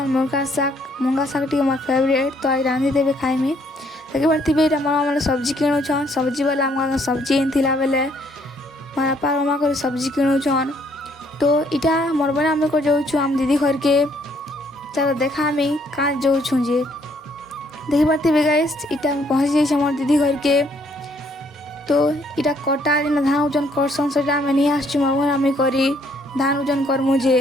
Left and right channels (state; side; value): normal; both; correlation 0.67